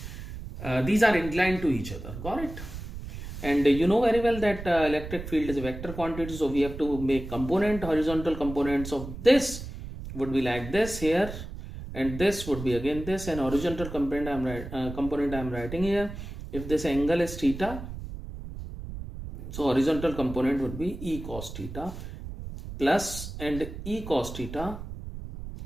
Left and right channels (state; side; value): noise; right; rumble, 10 dB below the sound